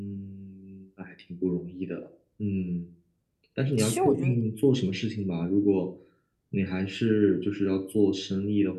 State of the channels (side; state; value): both; identical; correlation 1.00